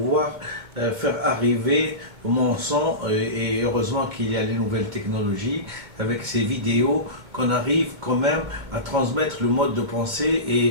faire arriver mon son, et heureusement qu'il y a les nouvelles technologies avec ces vidéos qu'on arrive quand même à transmettre le mode de pensée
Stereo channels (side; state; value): left; late; 2.2 ms